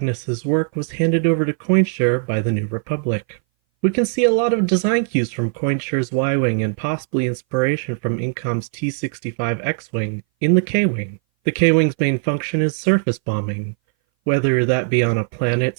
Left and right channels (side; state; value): left; silent; 60 dB below the other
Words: work was handed over to Koininscher by the New Republic. We can see a lot of design cues from Koinscher's Y-Wing and possibly inspiration from Incom's T-65 X-Wing in the K-Wing. The K-Wing's main function is surface bombing, whether that be on a